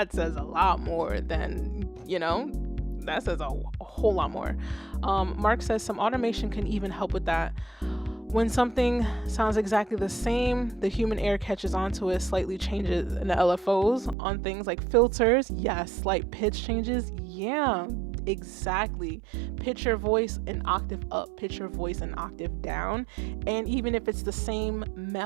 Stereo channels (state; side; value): drops out; left; at 14.2 s